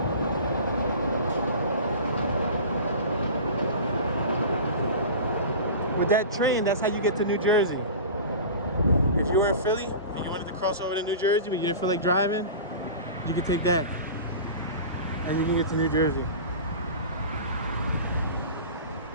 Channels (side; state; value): both; inverted; correlation -0.34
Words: With that train, that's how you get to New Jersey. If you were in Philly and you wanted to cross over to New Jersey but you didn't feel like driving, you can take that and you can get to New Jersey.